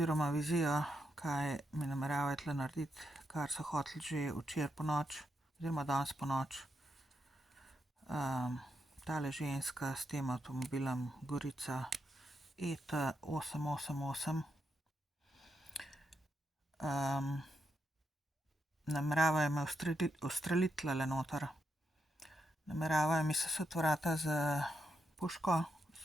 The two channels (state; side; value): normal; both; correlation 0.83